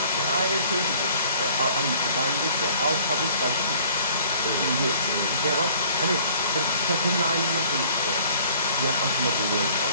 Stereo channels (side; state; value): both; inverted; correlation -0.54